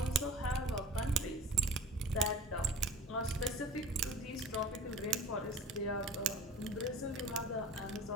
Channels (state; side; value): normal; both; correlation 0.41